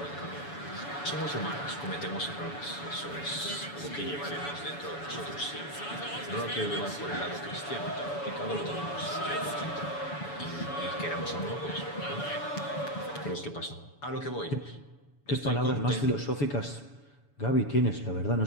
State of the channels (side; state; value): right; late; 7.0 ms